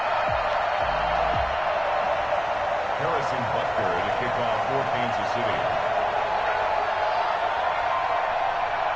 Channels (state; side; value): identical; both; correlation 1.00